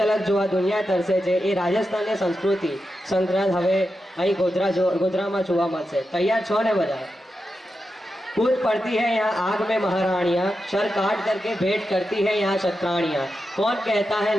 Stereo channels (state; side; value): normal; both; correlation 0.89